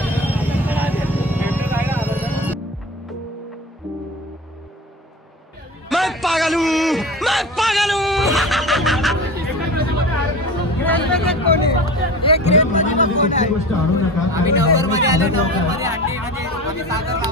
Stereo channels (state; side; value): normal; both; correlation 0.33